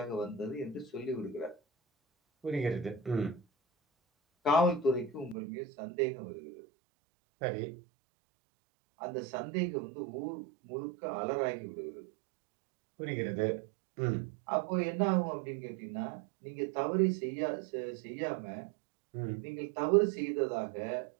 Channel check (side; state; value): left; drops out; at 5.4 s